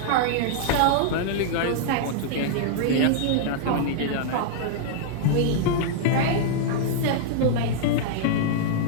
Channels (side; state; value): both; different; correlation -0.01